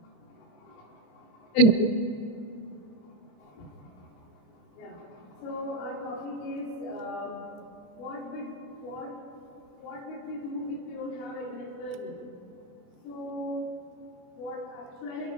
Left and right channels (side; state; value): right; late; 28 ms